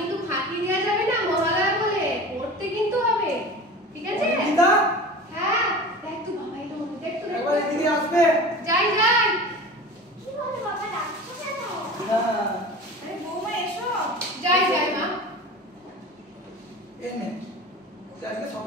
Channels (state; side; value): normal; both; correlation 0.36